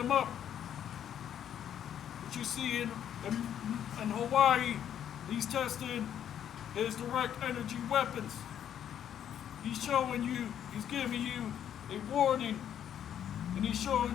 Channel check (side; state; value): right; quieter; 9.7 dB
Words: up. What you see in Hawaii, he's testing his direct energy weapons. He's showing you, he's giving you a warning, and he's